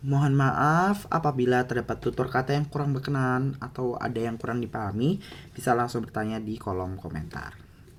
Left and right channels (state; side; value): identical; both; correlation 1.00